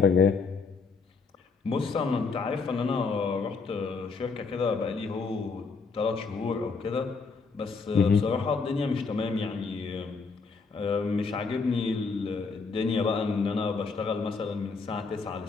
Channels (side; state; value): right; quieter; 4.7 dB